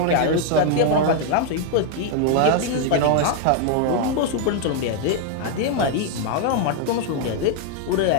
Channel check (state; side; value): different; both; correlation 0.00